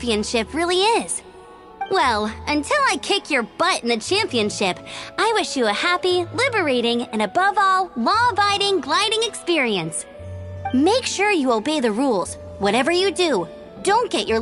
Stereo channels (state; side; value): identical; both; correlation 1.00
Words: really is. Well, until I kick your butt in the championship, I wish you a happy, liberating, and above all, law-abiding gliding experience. Make sure you obey the rules. Whatever you do, don't get your